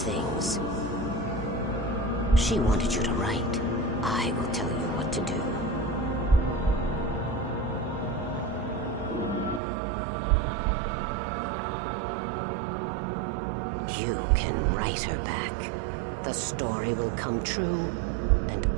She wanted you to write. I will tell you what to do. You can write her back. The story will come true, and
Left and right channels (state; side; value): drops out; left; at 9.6 s